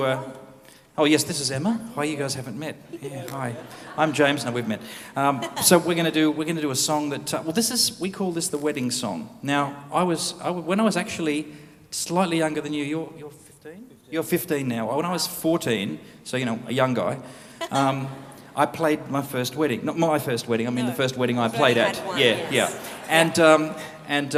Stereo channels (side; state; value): both; identical; correlation 1.00